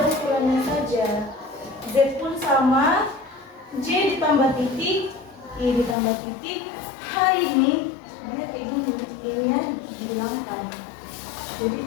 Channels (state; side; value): drops out; right; at 6.0 s